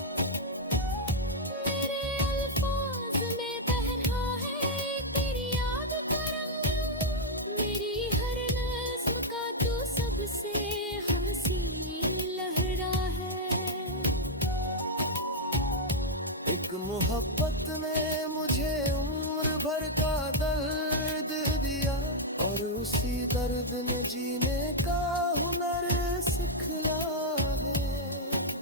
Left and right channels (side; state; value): both; normal; correlation -0.03